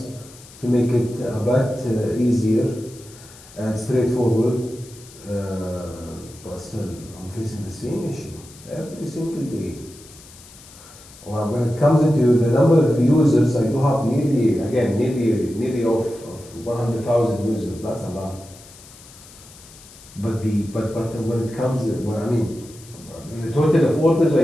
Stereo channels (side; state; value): left; noise; hiss, 21 dB below the sound